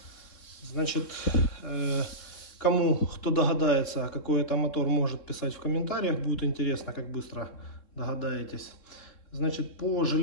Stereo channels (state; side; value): late; right; 3.7 ms